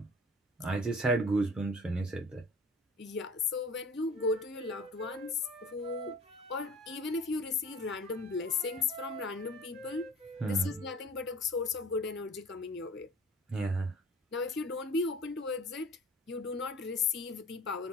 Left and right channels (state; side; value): normal; both; correlation 0.46